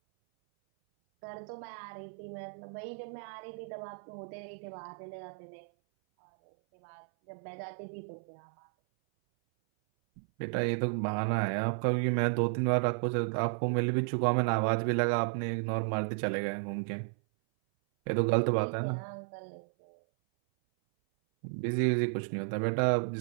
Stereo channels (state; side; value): silent; left; 56 dB below the other